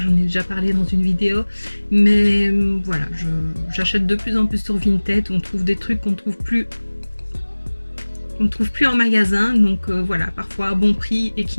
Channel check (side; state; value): both; inverted; correlation -1.00